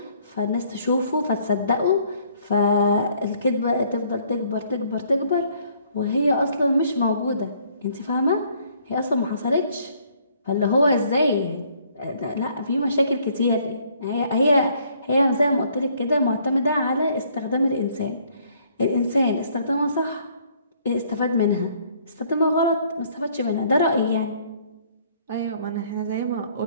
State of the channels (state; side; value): inverted; both; correlation -0.63